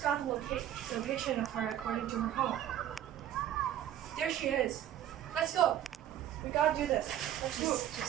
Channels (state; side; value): quieter; left; 11.4 dB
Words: got the location of her according to her home. There she is. Let's go. We gotta do this. Let's move.